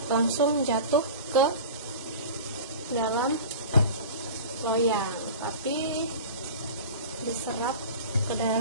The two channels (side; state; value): both; inverted; correlation -0.35